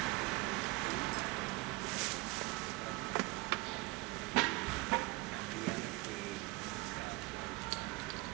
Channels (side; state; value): left; quieter; 23.7 dB